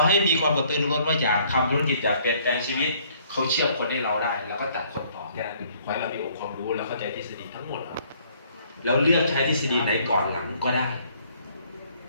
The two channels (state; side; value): inverted; both; correlation -0.62